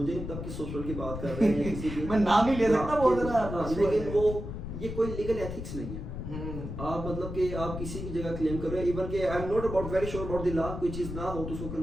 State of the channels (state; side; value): noise; left; rumble, 7 dB below the sound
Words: नहीं पता किस हॉस्पिटल की बात कर रहे हैं, किसी की मैं नाम नहीं ले सकता, बहुत लेकिन वो ये कोई लीगल एथिक्स नहीं है। आप मतलब कि आप किसी की जगह क्लेम कर रहे हो, इवन कि I am not about very sure about the law, कोई चीज ना हो तो उसको